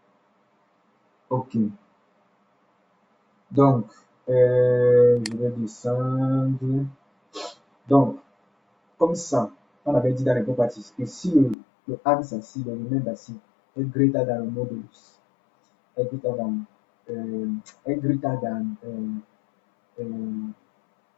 Ok. Donc, je vais descendre. Donc, comme ça, on avait dit dans les properties que si le axe assis, le remainder assis est greater than le modulus, est greater than,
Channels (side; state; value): right; drops out; at 11.6 s